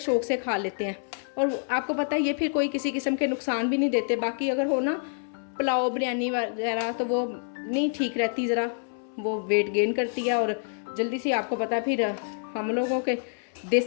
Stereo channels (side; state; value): right; silent; 60 dB below the other